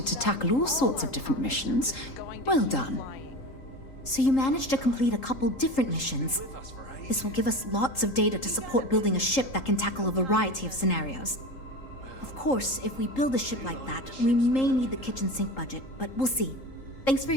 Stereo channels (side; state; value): right; late; 3.8 ms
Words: to tackle all sorts of different missions. Well done. So you managed to complete a couple different missions. This will give us lots of data to support building a ship that can tackle a variety of scenarios. Of course, if we build a ship like that, we may need the kitchen sink budget, but we'll see. Thanks for